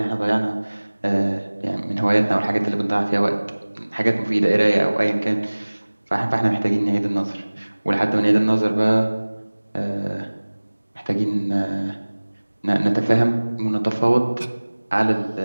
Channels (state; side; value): inverted; both; correlation -1.00